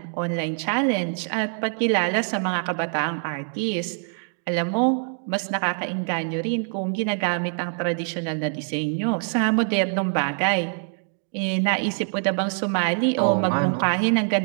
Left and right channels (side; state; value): left; silent; 59 dB below the other